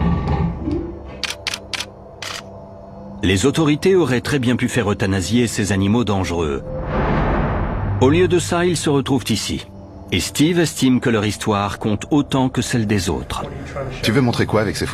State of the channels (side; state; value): both; identical; correlation 1.00